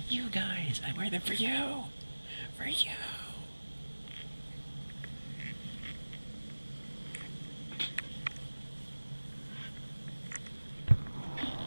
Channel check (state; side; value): inverted; both; correlation -1.00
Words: guys. I wear them for you. For you.